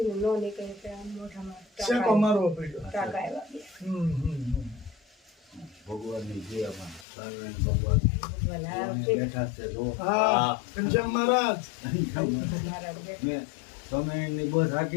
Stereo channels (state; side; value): drops out; right; at 7.1 s